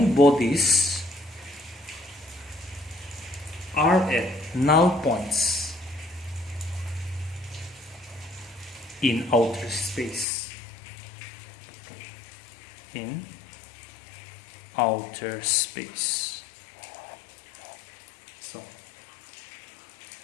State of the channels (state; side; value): drops out; right; at 10.2 s